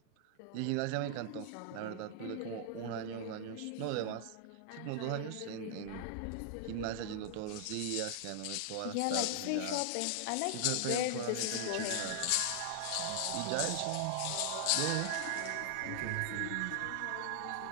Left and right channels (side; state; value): both; different; correlation 0.00